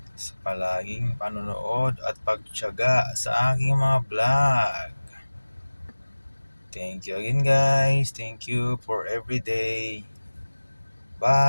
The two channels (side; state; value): both; inverted; correlation -1.00